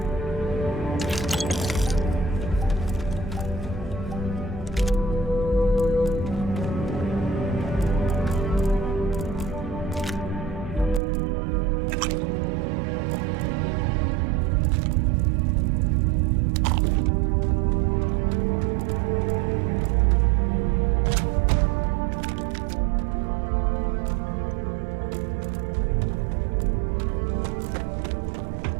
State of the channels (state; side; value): drops out; left; at 11.0 s